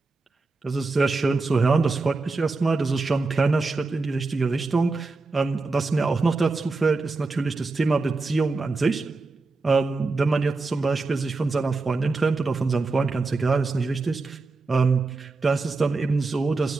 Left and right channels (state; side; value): quieter; left; 3.7 dB